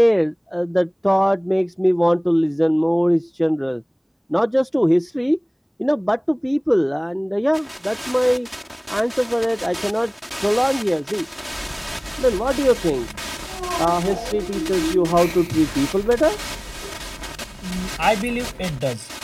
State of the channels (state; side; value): identical; both; correlation 1.00